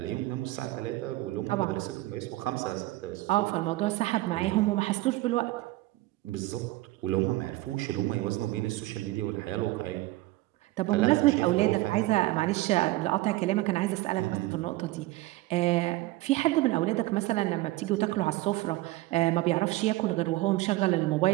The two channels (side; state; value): left; quieter; 18.7 dB